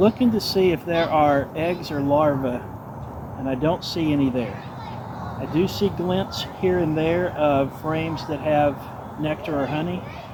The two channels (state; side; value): identical; both; correlation 1.00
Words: to see if there are eggs or larvae, and I don't see any there. I do see glints here and there of frames that have nectar or honey,